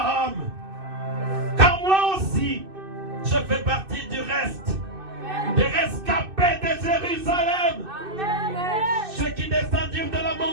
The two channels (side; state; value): left; late; 2.6 ms